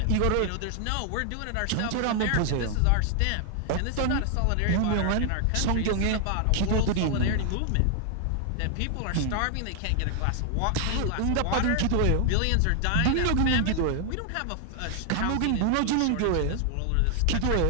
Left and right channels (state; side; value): different; both; correlation 0.00